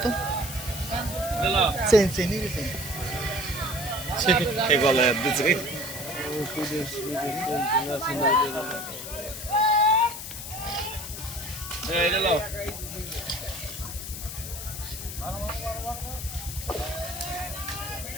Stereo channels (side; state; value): left; noise; hiss, 8 dB below the sound